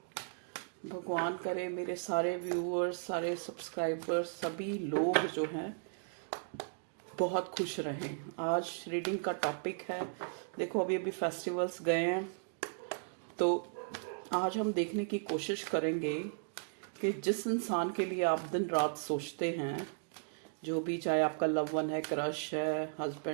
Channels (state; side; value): silent; left; digital silence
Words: भगवान करे मेरे सारे व्यूअर्स, सारे सब्सक्राइबर्स, सभी लोग जो हैं बहुत खुश रहें। आज रीडिंग का टॉपिक है, देखो अभी अभी फेस्टिवल्स गए हैं, तो आज हम देखने की कोशिश करेंगे कि जिस इंसान के लिए आप दिन रात सोचते हैं, जो भी, चाहे आपका लव वन है, क्रश है,